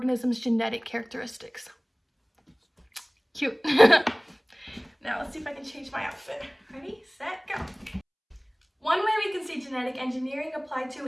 genetic characteristics. Cute. Now, let's see if I can change my outfit. Ready, set, go. One way we can see genetic engineering applied to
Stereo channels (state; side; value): identical; both; correlation 1.00